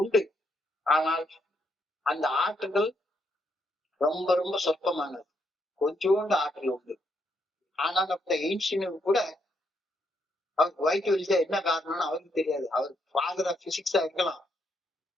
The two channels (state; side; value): normal; both; correlation 0.76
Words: உண்டு, ஆனால் அந்த ஆற்றல்கள் ரொம்ப ரொம்ப சொற்பமானது. கொஞ்சோண்டு ஆற்றல் உண்டு. ஆனால் அப்ப எயின்ஸ்டீனுக்கு கூட அவருக்கு வயிற்று வலிச்சா என்ன காரணம்னு அவருக்கு தெரியாது. அவர் ஃபாதர் ஆஃப் பிசிக்ஸா இருக்கலாம்,